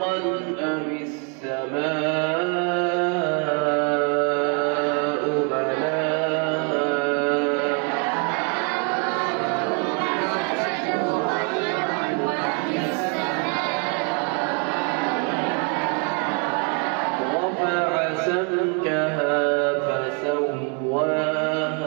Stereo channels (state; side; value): quieter; left; 37.9 dB